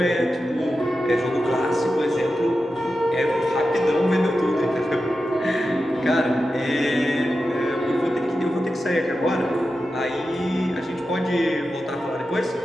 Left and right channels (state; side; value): normal; both; correlation 0.91